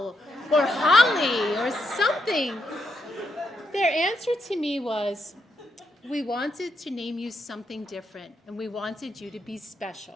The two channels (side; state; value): both; normal; correlation 0.80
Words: or Holly, or something. Their answer to me was, we wanted to name you something different, and we wanted you to be